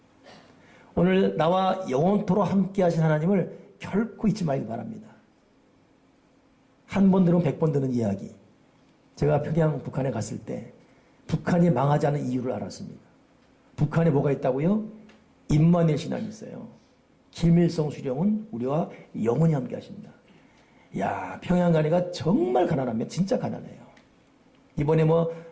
오늘 나와 영원토록 함께 하신 하나님을 결코 잊지 말기 바랍니다. 한 번 들으면 100번 듣는 이야기. 제가 평양 북한에 갔을 때 북한이 망하지 않은 이유를 알았습니다. 북한에 뭐가 있다고요? 임마누엘 신앙이 있어요. 김일성 수령은 우리와 영원히 함께 하신다. 야, 평양 가니까 정말 가난하면 진짜 가난해요. 이번에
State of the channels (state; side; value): identical; both; correlation 1.00